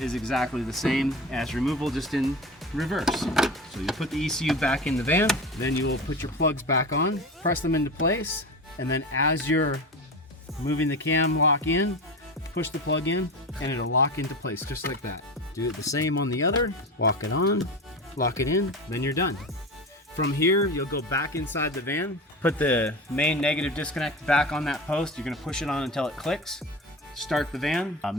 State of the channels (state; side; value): normal; both; correlation 0.27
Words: exactly the same as removal, just in reverse. So you put the ECU back in the van, then you will put your plugs back on, press them into place, and then as you're moving the cam lock in, push the plug in, and it'll lock into place just like that. Do it the same on the other, walk it on, lock it in, then you're done. From here, you'll go back inside the van, put the main negative disconnect back on that post. You're gonna push it on until it clicks. Start the van,